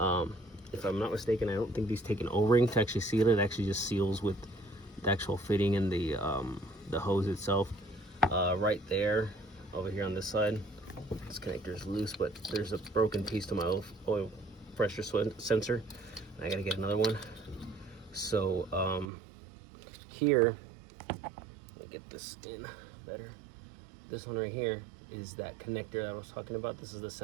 I'm not mistaken, I don't think these take an O-ring to actually seal it. It actually just seals with the actual fitting and the hose itself. Right there, over here on this side, this connector is loose, but there's a broken piece to my oil pressure sensor. I gotta get another one. So here, let me get this in better. This one right here is that connector that I was talking about. This is the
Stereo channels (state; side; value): drops out; left; at 19.1 s